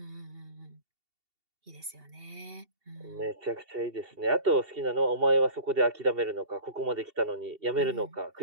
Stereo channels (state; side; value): late; left; 2.7 ms